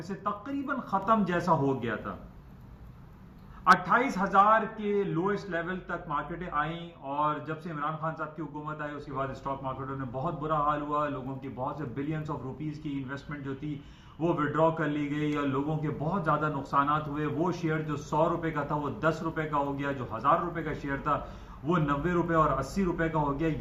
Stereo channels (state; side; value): identical; both; correlation 1.00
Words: से तकरीबन खत्म जैसा हो गया था। 28,000 के लोएस्ट लेवल तक मार्केटें आई और जब से इमरान खान साहब की हुकूमत आई उसके बाद स्टॉक मार्केटों में बहुत बुरा हाल हुआ। लोगों की बहुत से बिलियंस ऑफ रुपीस की इन्वेस्टमेंट जो थी वो विड्रॉ कर ली गई और लोगों के बहुत ज्यादा नुकसान हुए। वो शेयर जो 100 रुपए का था वो 10 रुपए का हो गया, जो 1000 रुपए का शेयर था वो 90 रुपए और 80 रुपए का हो गया।